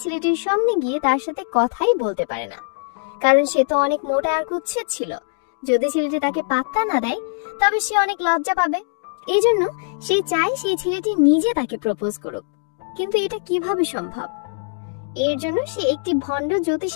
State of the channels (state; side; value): silent; right; digital silence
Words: ছেলেটির সামনে গিয়ে তার সাথে কথাই বলতে পারে না, কারণ সে তো অনেক মোটা আর কুৎসিত ছিল। যদি ছেলেটি তাকে পাত্তা না দেয় তবে সে অনেক লজ্জা পাবে। এই জন্য সে চায় সেই ছেলেটি নিজে তাকে প্রপোজ করুক। কিন্তু এটা কিভাবে সম্ভব? এর জন্য সে একটি ভণ্ড